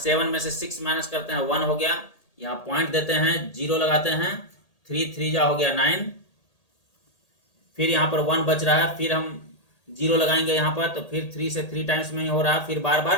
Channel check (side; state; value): right; late; 1.7 ms